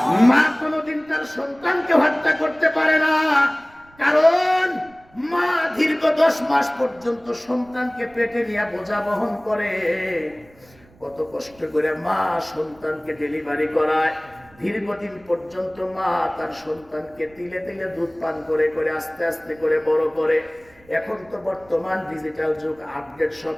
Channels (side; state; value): right; noise; rumble, 28 dB below the sound